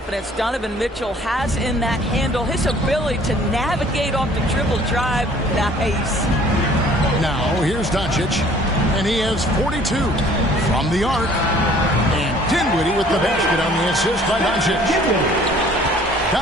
Donovan Mitchell has in that handle. His ability to navigate off the dribble drive. Nice. Now, here's Doncic. And he has 42 from the arc. And Dinwiddie with the basket on the assist by Doncic.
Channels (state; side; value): normal; both; correlation 0.55